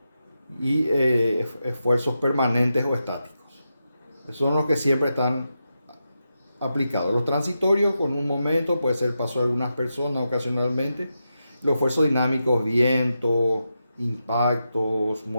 y esfuerzos permanentes o estáticos. Esos son los que siempre están aplicados. Los transitorios con un momento, puede ser el paso de algunas personas ocasionalmente. Los esfuerzos dinámicos, viento, impactos,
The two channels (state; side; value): inverted; both; correlation -0.88